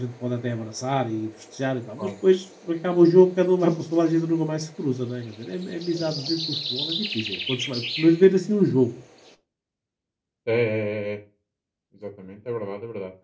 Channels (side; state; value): both; identical; correlation 1.00